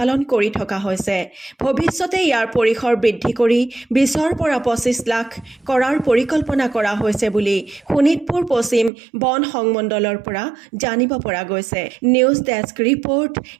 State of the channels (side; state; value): left; drops out; at 8.9 s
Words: কৰি থকা হৈছে। ভৱিষ্যতে ইয়াৰ পৰিসৰ বৃদ্ধি কৰি 20ৰ পৰা 25 লাখ কৰাৰ পৰিকল্পনা কৰা হৈছে বুলি শোণিতপুৰ পশ্চিম বন সংমণ্ডলৰ পৰা জানিব পৰা গৈছে। নিউজ ডেস্ক ৰিপৰ্ট,